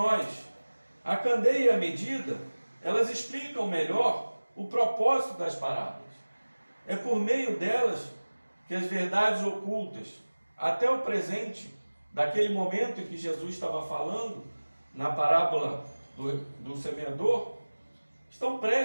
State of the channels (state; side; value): inverted; both; correlation -1.00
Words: A candeia e a medida, elas explicam melhor o propósito das parábolas. É por meio delas que as verdades ocultas, até o presente, daquele momento em que Jesus estava falando, na parábola do semeador, estão